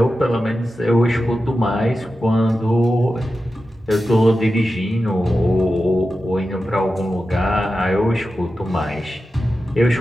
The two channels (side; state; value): both; normal; correlation 0.92